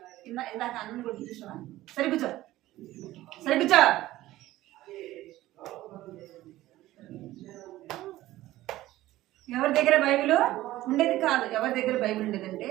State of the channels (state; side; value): quieter; left; 15.9 dB